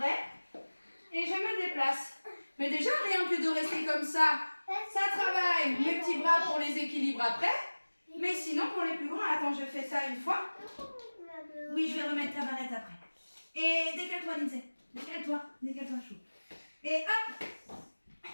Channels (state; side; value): inverted; both; correlation -1.00